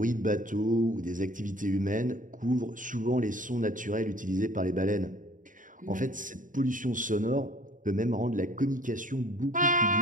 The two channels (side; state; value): left; late; 0.38 ms